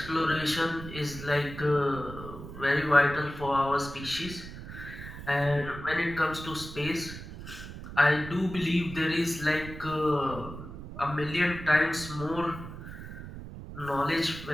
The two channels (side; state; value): right; noise; rumble, 12 dB below the sound